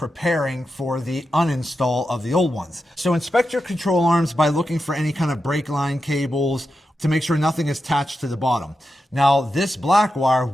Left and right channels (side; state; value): both; normal; correlation 0.89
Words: for the uninstall of the old ones. So inspect your control arms by looking for any kind of brake line cables to make sure nothing is attached to the bottom. Now, this black wire